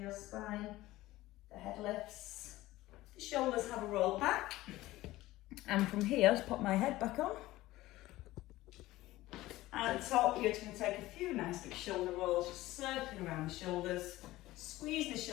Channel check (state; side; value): quieter; right; 17.2 dB